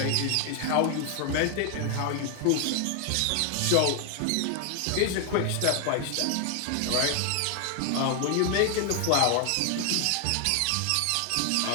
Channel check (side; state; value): both; different; correlation 0.00